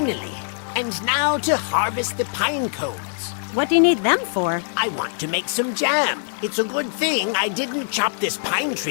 And now to harvest the pine cones. What do you need them for? I want to make some jam. It's a good thing I didn't chop this pine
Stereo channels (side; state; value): right; silent; 64 dB below the other